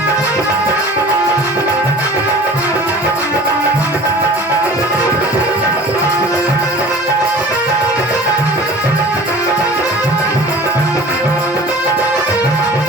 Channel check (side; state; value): both; normal; correlation 0.43